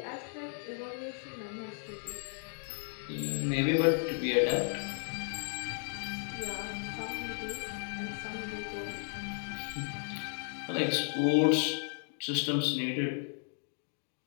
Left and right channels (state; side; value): silent; right; 55 dB below the other